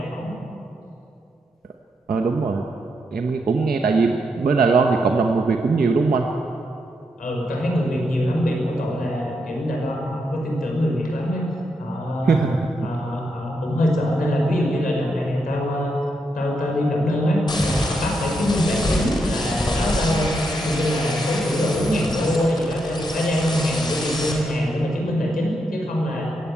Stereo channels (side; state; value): both; normal; correlation 0.81